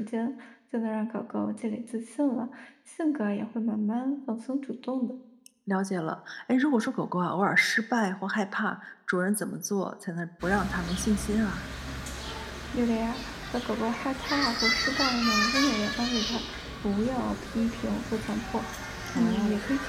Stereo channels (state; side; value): identical; both; correlation 1.00